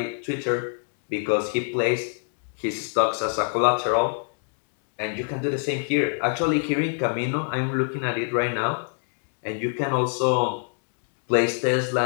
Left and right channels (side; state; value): right; silent; 61 dB below the other